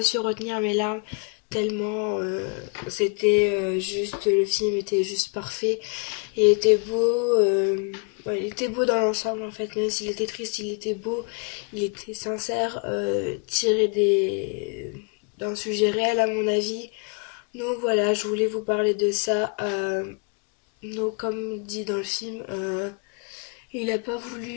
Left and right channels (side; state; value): right; quieter; 34.6 dB